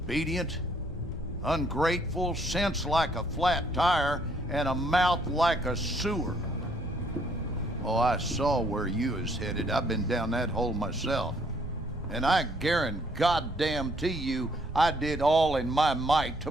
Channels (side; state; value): both; normal; correlation 0.66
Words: ungrateful, sense like a flat tire, and a mouth like a sewer. Oh, I saw where you was headed. I've been down that hole myself. And I guarantee you, I did all in my might to